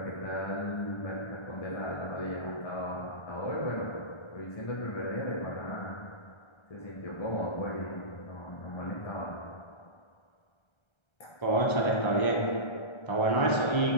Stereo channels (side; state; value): right; late; 1.3 ms